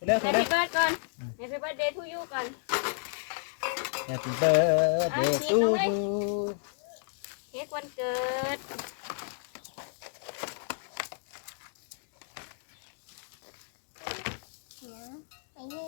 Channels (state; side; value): silent; right; digital silence